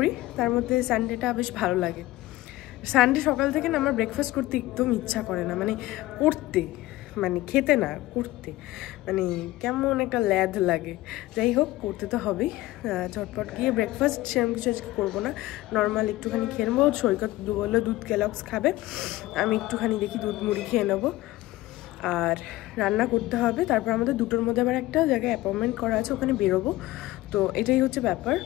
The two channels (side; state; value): right; quieter; 17.5 dB